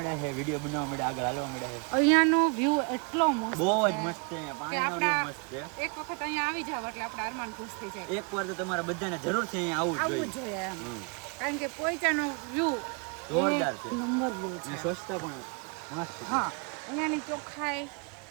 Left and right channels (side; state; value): left; quieter; 34.1 dB